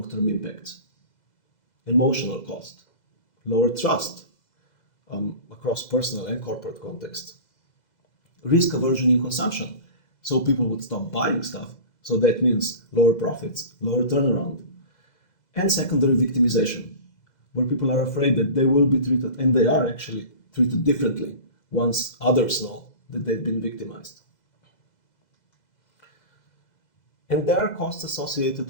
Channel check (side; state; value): right; late; 2.0 ms